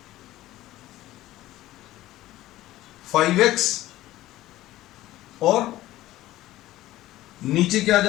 5x और नीचे क्या आ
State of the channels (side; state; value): right; quieter; 15.6 dB